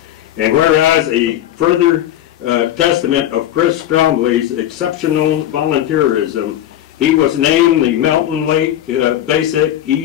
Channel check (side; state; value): right; quieter; 12.2 dB